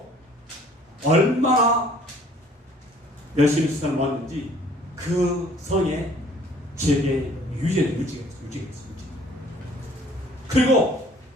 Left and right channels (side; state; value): both; normal; correlation 0.56